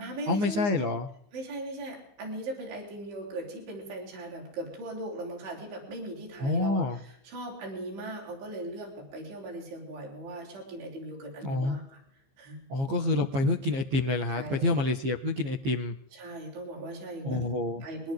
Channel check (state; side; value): late; left; 15 ms